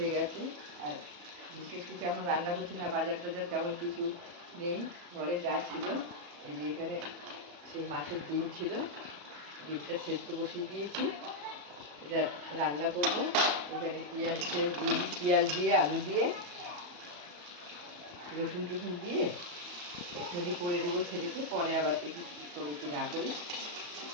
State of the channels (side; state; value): left; late; 35 ms